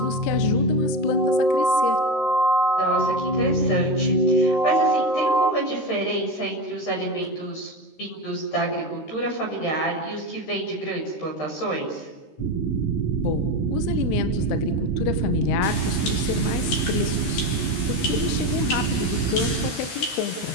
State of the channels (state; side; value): late; right; 13 ms